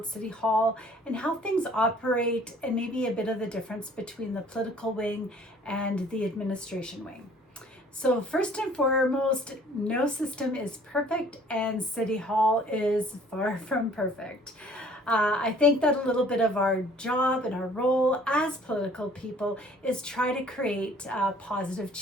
City Hall and how things operate and maybe a bit of the difference between the political wing and the administration wing. So first and foremost, no system is perfect and City Hall is far from perfect. I think that a little bit of our job and our role as political people is try to create positive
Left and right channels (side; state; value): both; normal; correlation 0.55